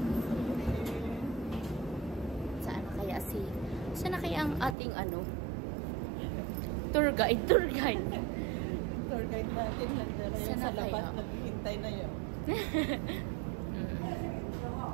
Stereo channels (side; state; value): left; drops out; at 4.8 s